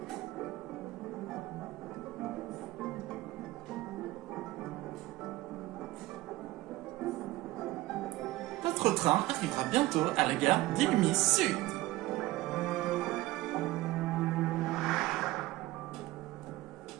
Notre train arrivera bientôt à la gare d'Illumis Sud.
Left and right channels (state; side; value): quieter; left; 18.1 dB